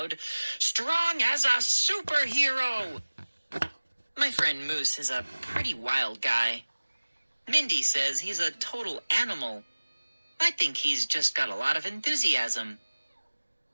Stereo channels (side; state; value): both; inverted; correlation -1.00